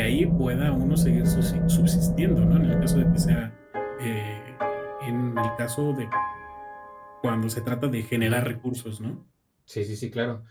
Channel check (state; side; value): identical; both; correlation 1.00